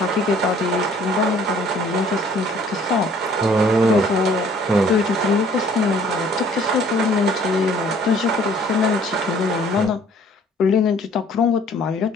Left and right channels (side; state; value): both; normal; correlation 0.57